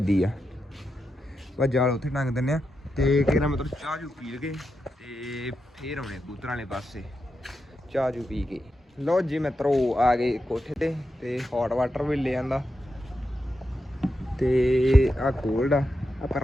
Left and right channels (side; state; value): both; normal; correlation 0.87